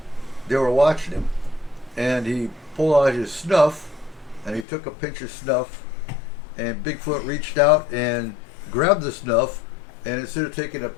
they were watching him, and he pulled out his snuff, and he took a pinch of snuff, and Bigfoot reached out and grabbed the snuff, and instead of taking a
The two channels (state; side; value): drops out; right; at 4.7 s